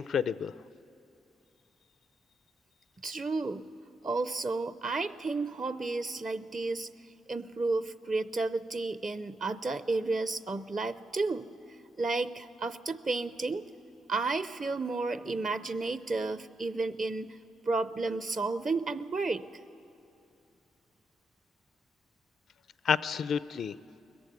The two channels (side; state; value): both; normal; correlation 0.82